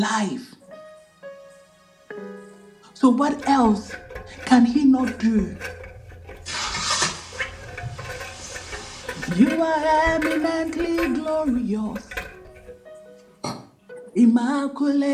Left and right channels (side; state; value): both; identical; correlation 1.00